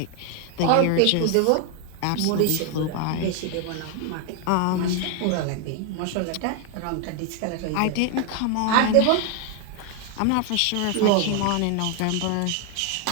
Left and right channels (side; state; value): both; different; correlation 0.01